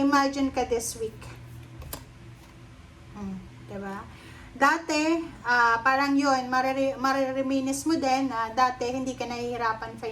ka this week. Diba? Dati, parang yun, marereminis mo din na dati hindi ka nahihirapan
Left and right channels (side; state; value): both; identical; correlation 1.00